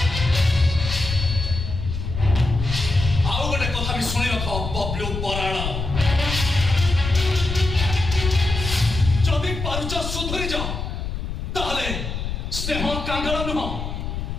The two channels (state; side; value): noise; left; rumble, 5 dB below the sound